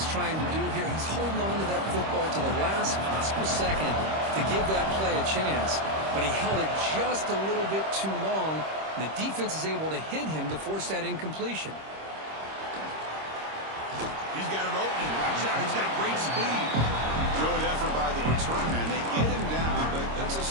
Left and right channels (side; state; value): left; late; 26 ms